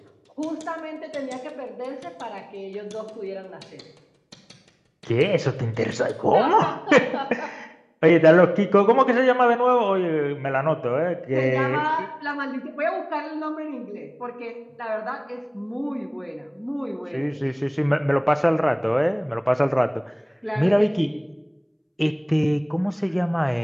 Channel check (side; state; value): both; identical; correlation 1.00